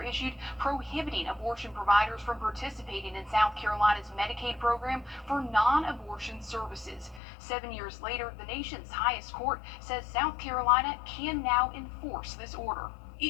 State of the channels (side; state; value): right; drops out; at 7.2 s